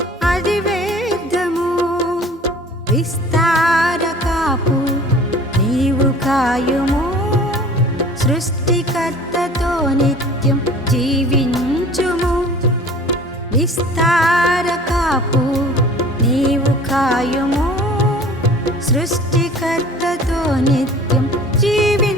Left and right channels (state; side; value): normal; both; correlation 0.46